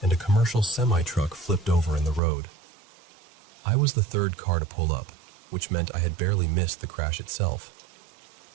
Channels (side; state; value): left; drops out; at 2.2 s